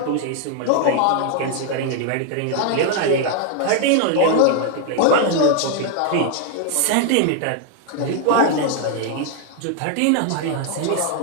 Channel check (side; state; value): both; different; correlation 0.01